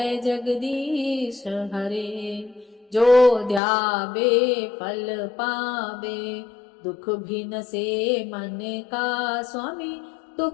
जगदीश हरे। जो ध्यावे फल पावे, दुख भी न से मन का स्वामी,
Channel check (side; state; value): right; drops out; at 3.6 s